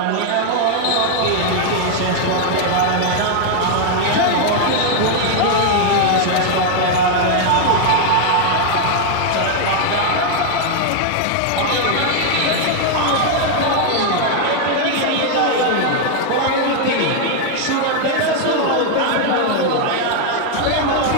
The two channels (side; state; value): both; different; correlation 0.00